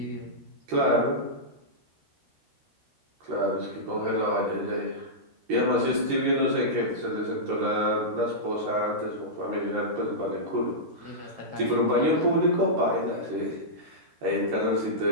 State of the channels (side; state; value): left; late; 13 ms